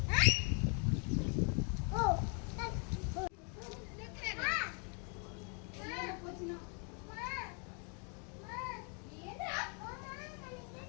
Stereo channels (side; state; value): right; quieter; 38.1 dB